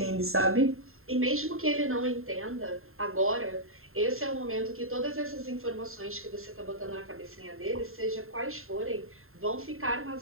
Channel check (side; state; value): left; late; 0.61 ms